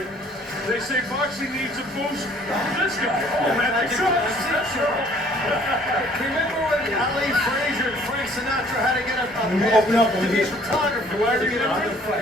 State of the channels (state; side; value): normal; both; correlation 0.57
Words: They say boxing needs a boost. This guy. Oh, man, that's Remember when Ali Frazier and Frank Sinatra had to get a open up to be a photographer? Do I